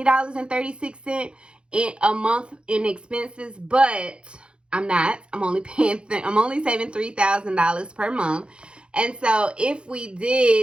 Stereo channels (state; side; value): late; left; 0.055 ms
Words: in a month in expenses, but I'm not. I'm only saving $3,000 per month. And so if we